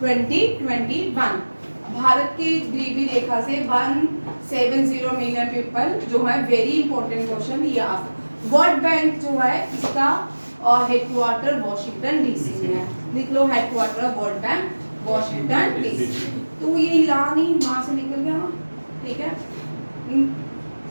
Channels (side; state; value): both; inverted; correlation -1.00